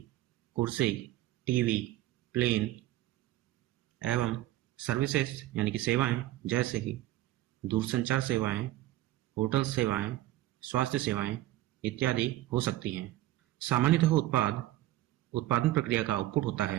कुर्सी, टीवी, प्लेन एवं सर्विसेज यानी कि सेवाएं जैसे कि दूरसंचार सेवाएं, होटल सेवाएं, स्वास्थ्य सेवाएं इत्यादि हो सकती हैं। सामान्यतः उत्पादन प्रक्रिया का आउटपुट होता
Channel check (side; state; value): left; quieter; 15.5 dB